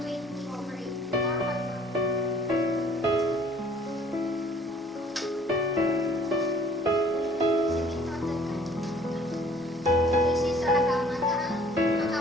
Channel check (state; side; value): normal; both; correlation 0.55